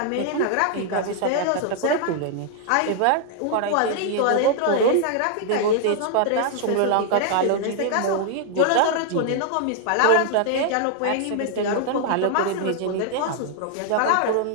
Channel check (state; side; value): different; both; correlation 0.00